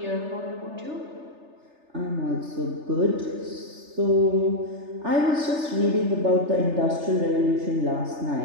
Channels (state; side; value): late; left; 3.3 ms